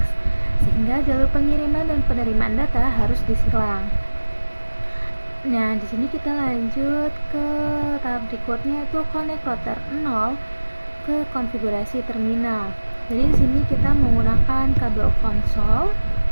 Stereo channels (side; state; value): both; inverted; correlation -1.00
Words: sehingga jalur pengiriman dan penerimaan data harus disilang. Nah, di sini kita lanjut ke tahap berikutnya, itu connect router 0 ke konfigurasi terminal. Jadi di sini kita menggunakan kabel konsol